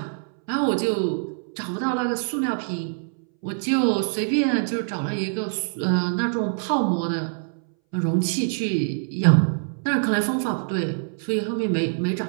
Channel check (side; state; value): left; silent; 61 dB below the other